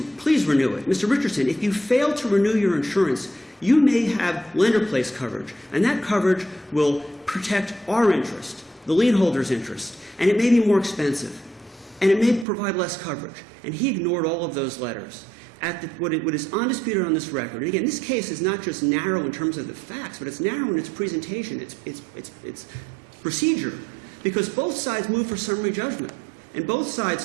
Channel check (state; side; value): drops out; left; at 12.5 s